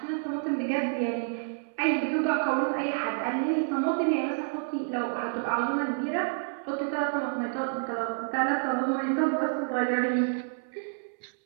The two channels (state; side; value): silent; left; 59 dB below the other